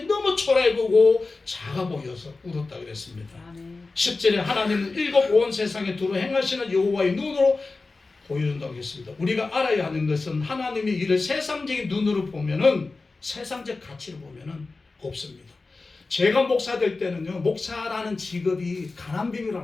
너무 초라해 보고 작아 보여서 울었다 그랬습니다. 10절에 하나님은 일곱 온 세상에 두루 행하시는 여호와의 눈으로 보여준다고 했습니다. 우리가 알아야 하는 것은 하나님의 일을 세상적인 눈으로 보면은 세상적 가치로 보면은 없습니다. 제가 목사 될 때는요, 목사라는 직업이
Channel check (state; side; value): quieter; right; 3.7 dB